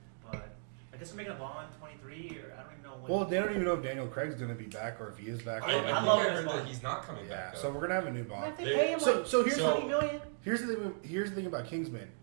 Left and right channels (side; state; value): left; silent; digital silence